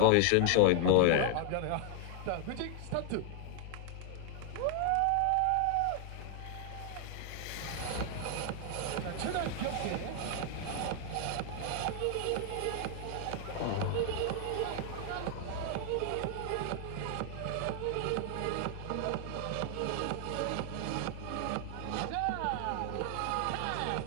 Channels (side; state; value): both; different; correlation 0.00